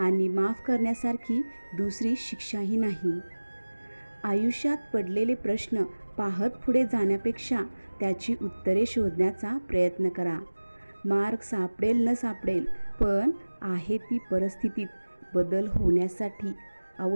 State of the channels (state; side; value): inverted; both; correlation -1.00